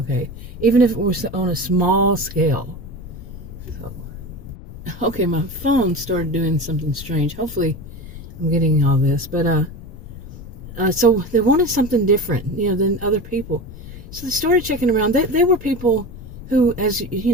even if it was on a small scale. So, okay, my phone started doing something strange. Hopefully, I'm getting all this. But so they wanted something different, than other people. So they started checking around. They were people who, as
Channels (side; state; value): left; noise; rumble, 16 dB below the sound